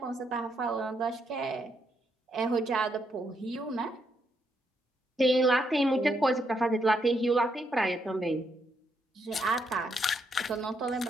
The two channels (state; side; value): normal; both; correlation 0.77